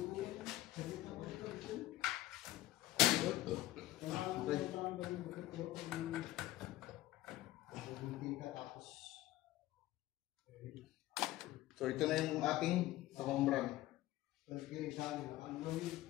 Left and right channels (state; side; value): quieter; right; 16.1 dB